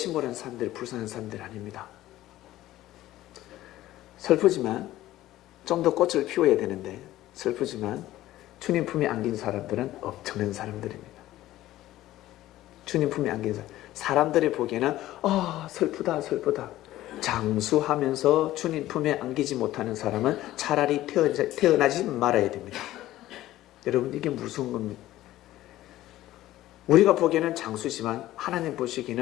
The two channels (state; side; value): quieter; right; 15.1 dB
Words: 사람들, 불쌍한 사람들 아닙니다. 슬프지만 좀 더 꽃을 피워야 되는데, 슬프지만 주님 품에 안긴 사람들은 엄청난 사람들입니다. 주님 품에 안긴 사람들이 보기에는 슬프다 슬프다. 장수하면서 주님 품에 안기지 못하는 사람은 차라리 태어나지 말아야 됩니다. 여러분, 이게 무서운 겁니다. 우리가 보기에는 장수지만 하나님